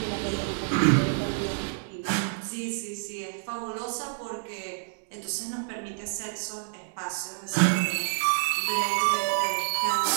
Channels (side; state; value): left; silent; digital silence